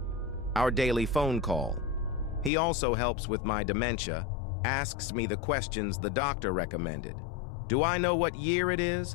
Our daily phone call. He also helps with my dementia, asks me the questions the doctor recommended. Do I know what year it is?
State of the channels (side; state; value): right; drops out; at 2.5 s